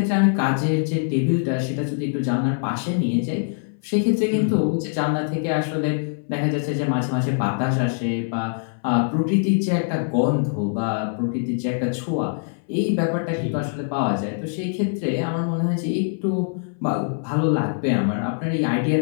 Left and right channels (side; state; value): right; silent; 63 dB below the other